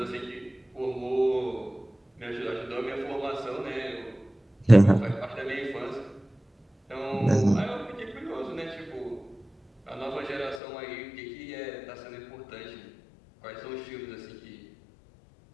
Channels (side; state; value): right; drops out; at 10.6 s